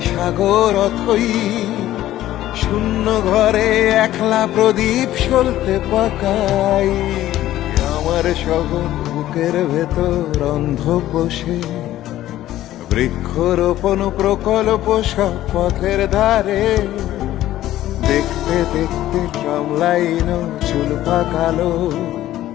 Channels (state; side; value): quieter; right; 13.9 dB